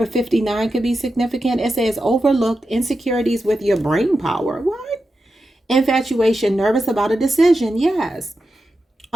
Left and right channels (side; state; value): both; normal; correlation 0.90